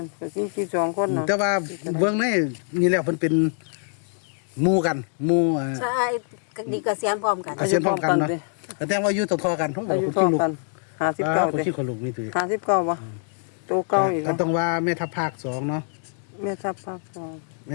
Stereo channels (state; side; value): silent; right; 62 dB below the other